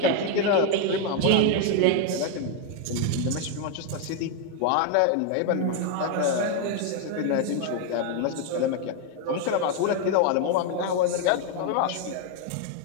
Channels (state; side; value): different; both; correlation 0.01